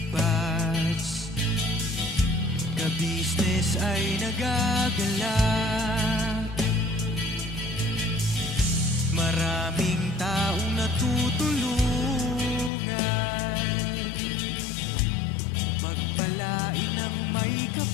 ka-business ay nagagalak. Maraming taong natutulungan, pagpalain ng may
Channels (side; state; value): right; drops out; at 12.7 s